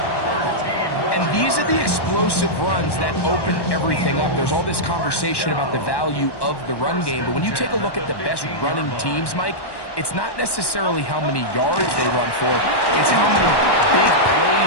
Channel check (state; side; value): late; right; 1.1 ms